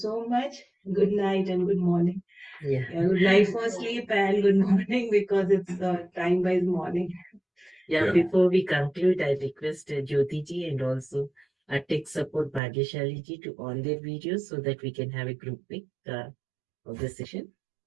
much. Good night and good morning. Yeah. Good night for sleep and good morning because it's time-wise morning. Yeah, before we conclude, I request Jyoti ji and also tech support Bhagyashali ji to on their videos so that we can have a group pic of the session.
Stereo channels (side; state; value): left; drops out; at 12.6 s